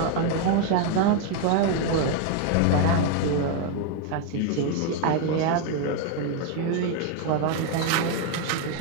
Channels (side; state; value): both; different; correlation 0.01